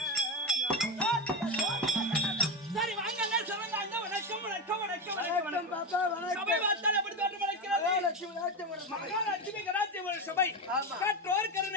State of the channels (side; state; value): both; normal; correlation 0.16